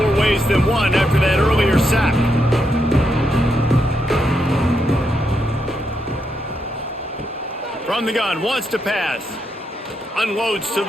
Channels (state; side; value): normal; both; correlation 0.81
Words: ways than one after that earlier sack. From the gun, wants to pass. Unloads to